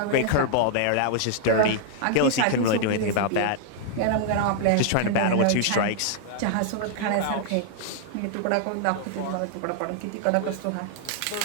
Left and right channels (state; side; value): different; both; correlation -0.01